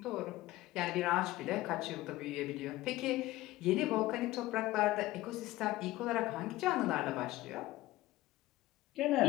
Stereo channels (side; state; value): right; quieter; 17.4 dB